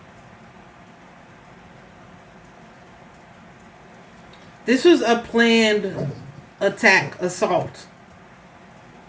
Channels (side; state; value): both; identical; correlation 1.00